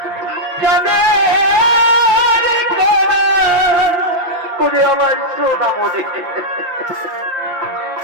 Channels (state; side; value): late; left; 5.8 ms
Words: আমার সোনা মনে